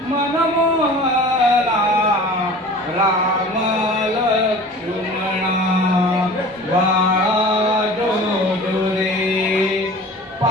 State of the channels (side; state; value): both; normal; correlation 0.41